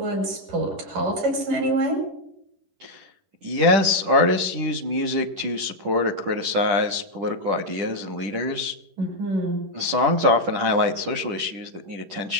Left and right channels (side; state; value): left; late; 10 ms